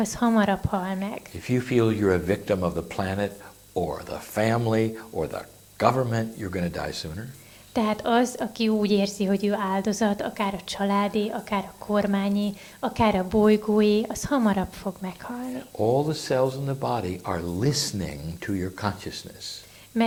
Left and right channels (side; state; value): both; identical; correlation 1.00